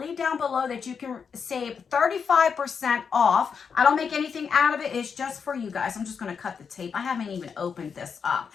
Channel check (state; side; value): quieter; right; 6.3 dB